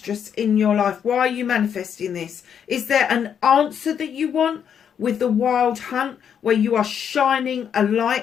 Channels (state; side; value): quieter; right; 8.1 dB